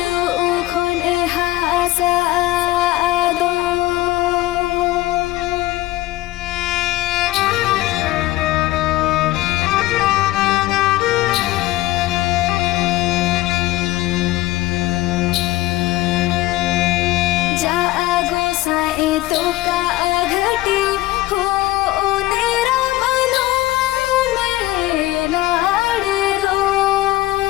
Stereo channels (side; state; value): right; quieter; 17.5 dB